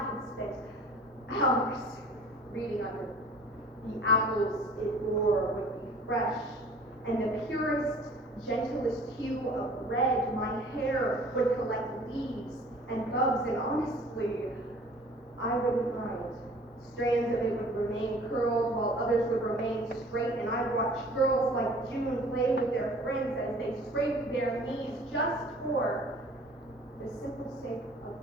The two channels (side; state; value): both; normal; correlation 0.49